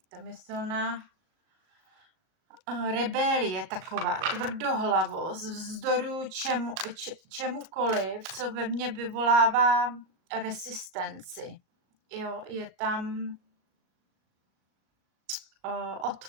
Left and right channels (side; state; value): left; late; 38 ms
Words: tam je silná rebelie taková, tvrdohlavost, vzdoru čemukoliv, co ve mně vyvolává rezistenci. Jo, je tam